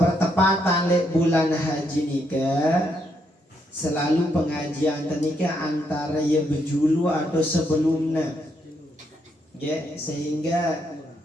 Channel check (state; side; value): normal; both; correlation 0.76